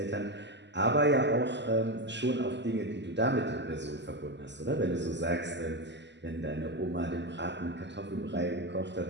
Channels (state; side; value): late; left; 0.51 ms